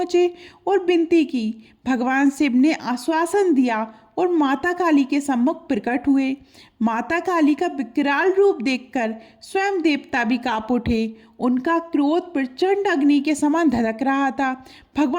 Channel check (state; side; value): identical; both; correlation 1.00